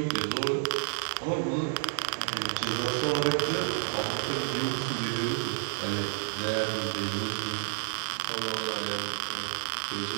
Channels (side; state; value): left; silent; 58 dB below the other